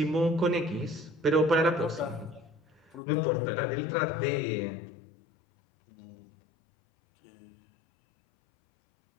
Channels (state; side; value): drops out; right; at 3.0 s